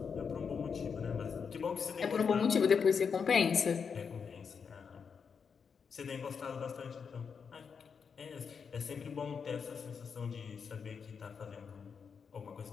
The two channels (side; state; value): right; quieter; 6.2 dB